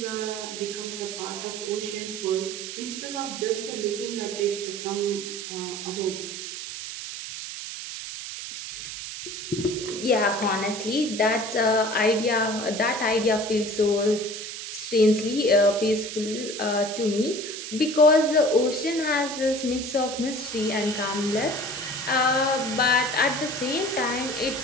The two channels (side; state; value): right; noise; hiss, 8 dB below the sound